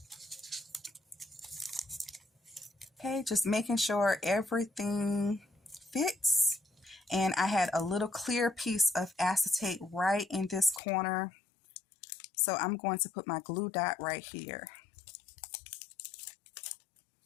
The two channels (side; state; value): right; drops out; at 10.8 s